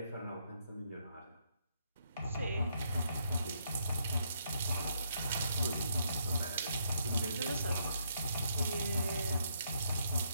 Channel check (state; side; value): inverted; both; correlation -0.75